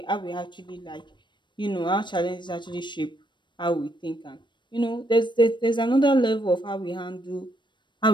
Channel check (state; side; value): late; right; 0.22 ms